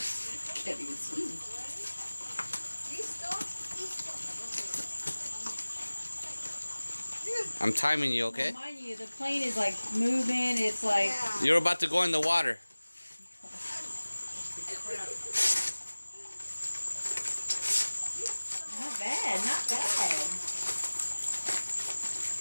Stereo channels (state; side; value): inverted; both; correlation -1.00